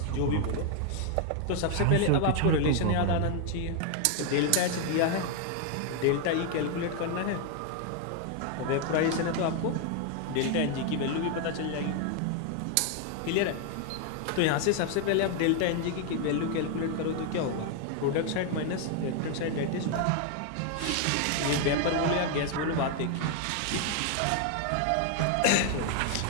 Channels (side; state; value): both; different; correlation 0.01